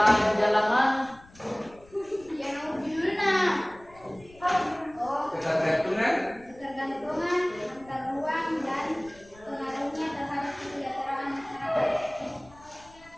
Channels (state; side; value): noise; left; rumble, 25 dB below the sound